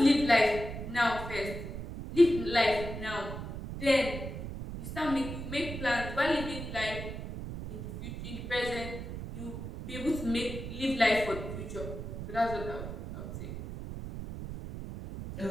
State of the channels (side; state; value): right; noise; rumble, 7 dB below the sound